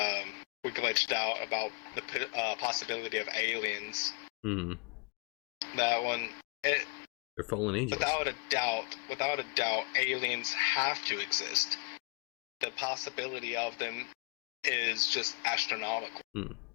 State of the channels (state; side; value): quieter; right; 31.1 dB